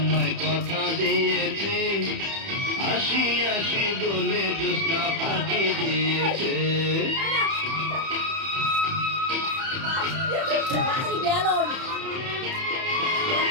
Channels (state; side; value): late; left; 30 ms